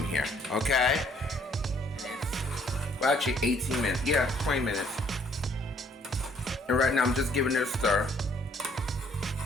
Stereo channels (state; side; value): normal; both; correlation 0.63